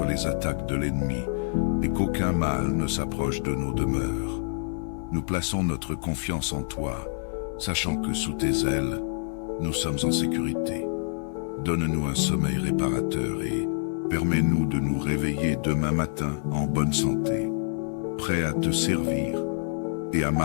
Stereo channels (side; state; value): right; silent; 60 dB below the other